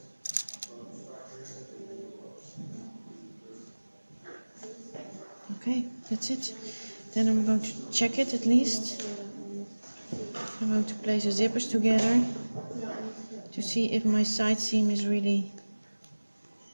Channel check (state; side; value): inverted; both; correlation -1.00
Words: Okay, that's it. Then I'm going to check it at least. I'm going to place the zippers together to see if my side seam is really